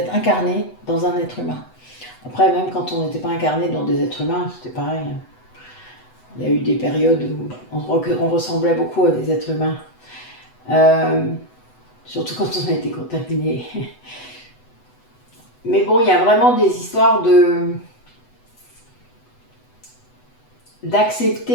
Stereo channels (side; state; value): right; late; 8.0 ms